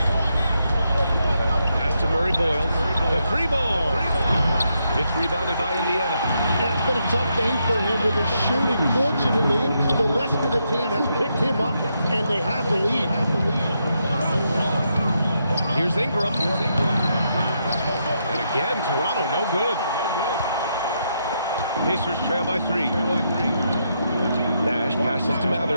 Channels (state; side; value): inverted; both; correlation -0.80